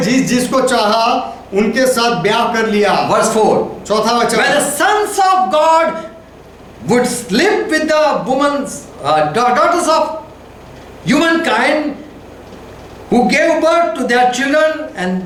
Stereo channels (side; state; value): both; identical; correlation 1.00